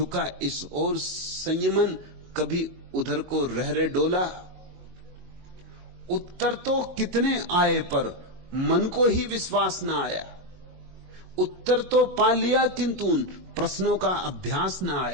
इस ओर संयमन, कभी उधर को रहरे डोला। उत्तर तो कितने आए पर मन को ही विश्वास ना आया। उत्तर तो पा लिया किंतु उन प्रश्नों का अभ्यास ना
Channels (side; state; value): left; late; 22 ms